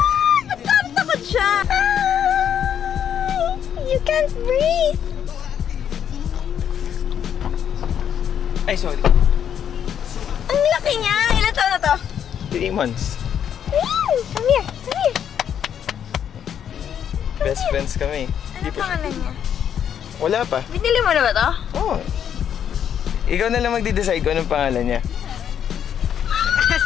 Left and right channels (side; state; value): right; quieter; 8.9 dB